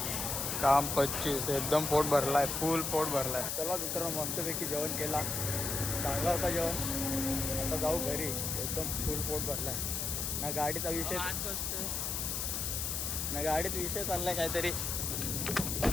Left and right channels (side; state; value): left; noise; hiss, 1 dB below the sound